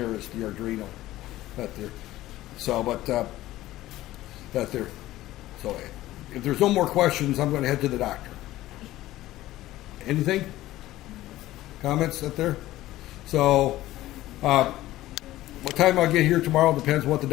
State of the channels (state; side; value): quieter; right; 15.8 dB